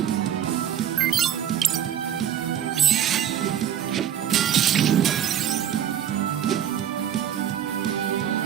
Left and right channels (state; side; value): quieter; left; 9.8 dB